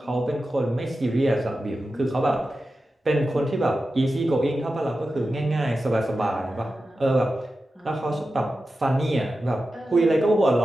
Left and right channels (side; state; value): both; normal; correlation 0.92